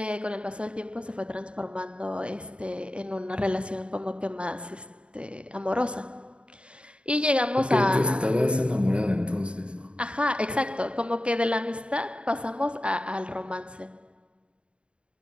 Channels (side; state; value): left; late; 0.056 ms